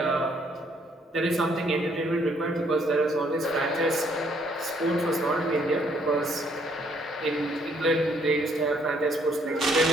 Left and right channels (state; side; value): normal; both; correlation 0.67